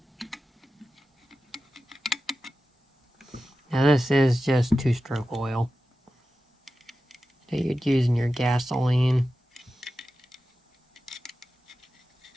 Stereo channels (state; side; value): normal; both; correlation 0.93